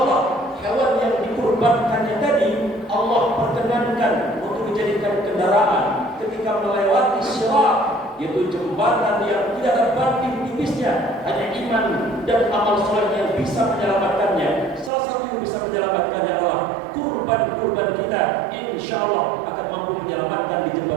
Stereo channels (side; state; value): left; drops out; at 14.9 s